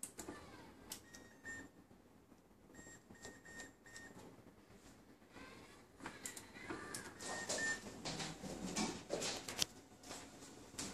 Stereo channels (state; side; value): identical; both; correlation 1.00